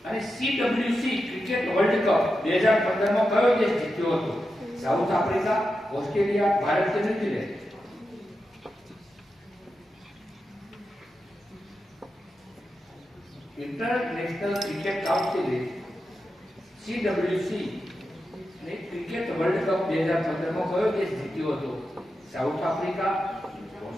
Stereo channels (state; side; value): normal; both; correlation 0.89